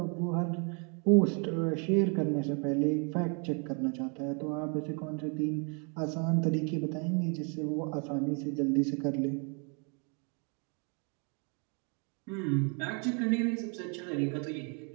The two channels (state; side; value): quieter; left; 36.4 dB